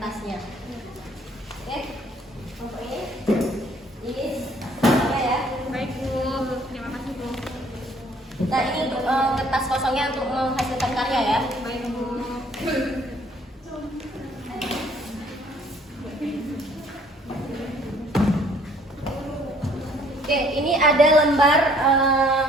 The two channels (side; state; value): both; normal; correlation 0.60